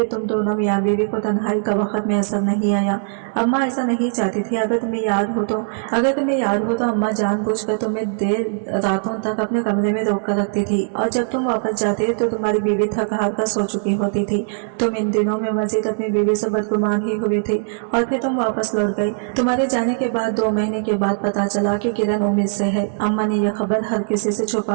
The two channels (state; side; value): silent; left; digital silence